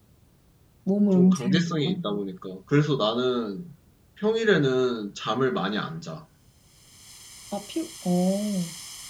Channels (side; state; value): both; identical; correlation 1.00